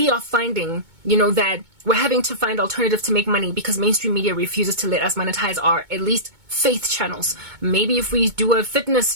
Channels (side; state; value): left; late; 2.2 ms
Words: are finding, that we're having to find alternatives to make money because mainstream media refuses to let us monetize our, at least, faith channels. Maybe if we do a fitness